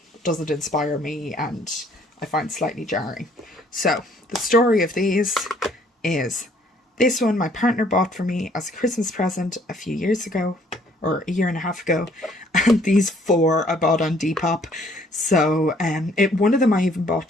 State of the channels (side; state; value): both; normal; correlation 0.62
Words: doesn't inspire me and I find slightly jarring. So the story of these is, this one my partner bought for me as a Christmas present a few years ago, or a year and a half ago, and these 4 I bought on Depop. So one of them I even bought